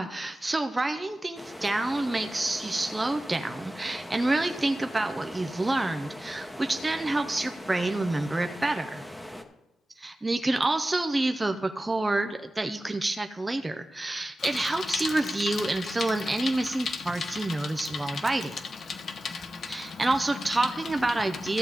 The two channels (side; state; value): both; normal; correlation 0.95